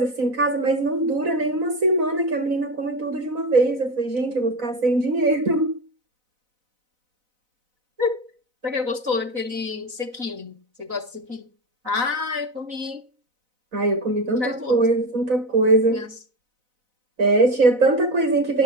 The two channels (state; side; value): late; left; 4.0 ms